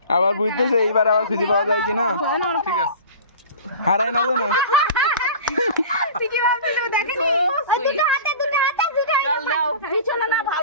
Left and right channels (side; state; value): both; inverted; correlation -0.38